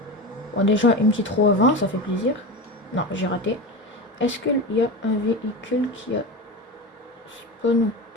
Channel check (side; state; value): both; normal; correlation 0.24